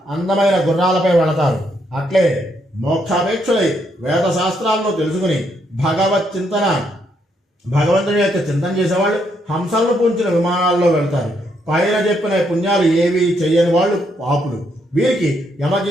అందమైన గుర్రాలపై వెళతారు. అట్లే మోక్షాపేక్షులై వేద శాస్త్రాలను తెలుసుకుని భగవత్ చింతన భగవంతుని యొక్క చింతన చేసేవాళ్ళు హంసలను పూంచిన విమానాల్లో వెళ్తారు. పైన చెప్పిన పుణ్యాలు ఏవి చెయ్యని వాళ్ళు పాపులు. వీరికి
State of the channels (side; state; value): both; normal; correlation 0.75